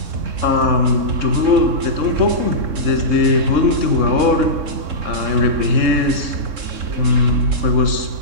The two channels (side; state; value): left; late; 3.6 ms